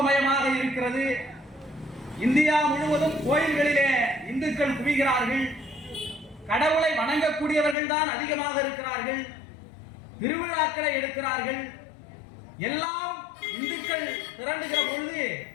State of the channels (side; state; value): right; drops out; at 7.8 s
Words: இருக்கிறது, இந்தியா முழுவதும் கோயில்களிலே இந்துக்கள் குவிகிறார்கள், கடவுளை வணங்கக்கூடியவர்கள் தான் அதிகமாக இருக்கிறார்கள், திருவிழாக்களை எடுக்கிறார்கள், எல்லாம் இந்துக்கள் திரண்டுகிற பொழுது